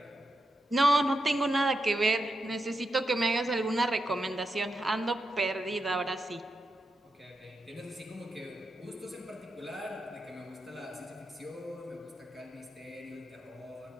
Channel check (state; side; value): normal; both; correlation 0.86